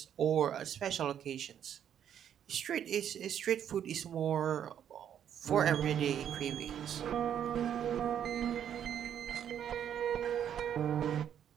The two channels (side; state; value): left; quieter; 9.4 dB